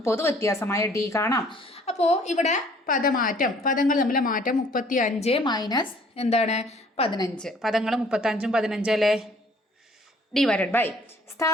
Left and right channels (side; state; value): both; normal; correlation 0.57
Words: പൊതുവ്യത്യാസമായ ഡി കാണാം. അപ്പോൾ ഇവിടെ പദമാറ്റം, പദങ്ങൾ തമ്മിലെ മാറ്റം 35 മൈനസ് എന്താണ് 15. പദങ്ങൾ 35ഉം 15 അല്ലേ? ഡിവൈഡഡ് ബൈ